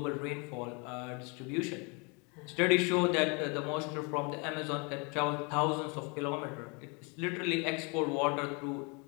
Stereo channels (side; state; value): right; quieter; 32.0 dB